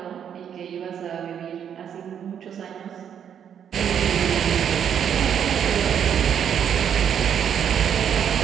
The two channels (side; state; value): left; quieter; 8.6 dB